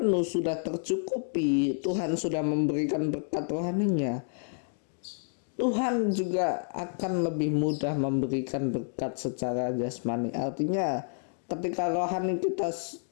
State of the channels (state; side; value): silent; right; digital silence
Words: sudah tercukupi, Tuhan sudah memberikan berkat rohaninya, Tuhan juga akan lebih mudah memberikan berkat secara jasmani. Artinya ketika rohani kita,